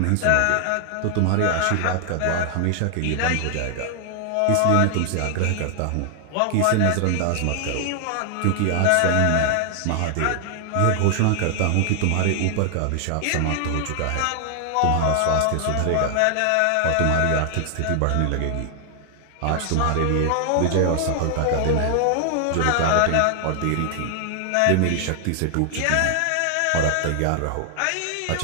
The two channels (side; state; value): both; different; correlation 0.00